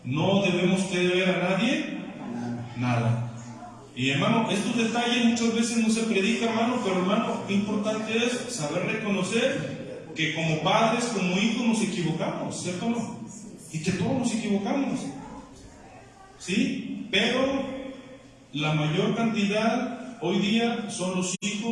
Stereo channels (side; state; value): both; identical; correlation 1.00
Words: No debemos que deber a nadie nada. Y hermano, estos detalles muchas veces no se predica, hermano, pero hermano, qué importante es saber reconocer que como padres, como hijos nos equivocamos, ¿cierto o no? Y que todos nos equivocamos, ¿sí? Pero la mayor cantidad hoy día son los